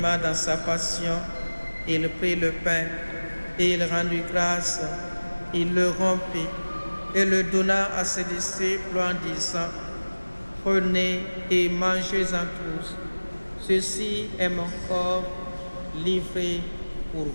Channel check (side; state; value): both; inverted; correlation -1.00